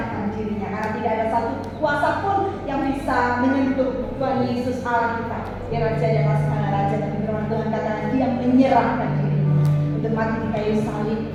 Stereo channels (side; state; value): both; identical; correlation 1.00